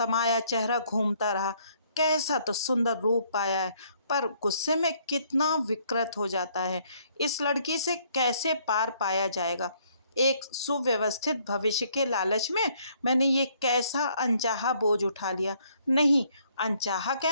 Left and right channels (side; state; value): both; inverted; correlation -0.66